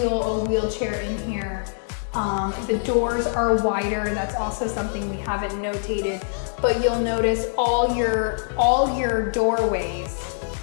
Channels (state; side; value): silent; right; digital silence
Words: a wheelchair in here. The doors are wider. That's also something we haven't notated, but you'll notice all your doorways